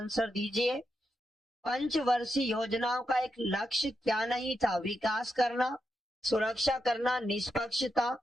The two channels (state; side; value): normal; both; correlation 0.85